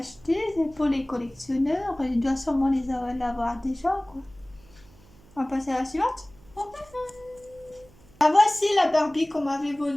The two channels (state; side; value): noise; right; hum, 26 dB below the sound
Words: C'est pour les collectionneurs. Il doit sûrement l'avoir déjà, quoi. On va passer à la suivante. Ah, voici la Barbie qu'on m'avait